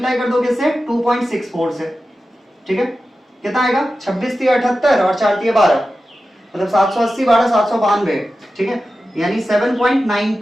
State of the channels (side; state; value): both; normal; correlation 0.93